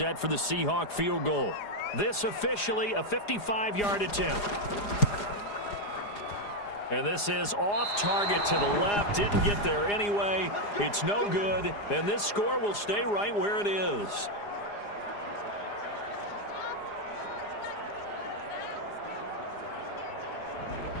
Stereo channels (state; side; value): late; right; 4.9 ms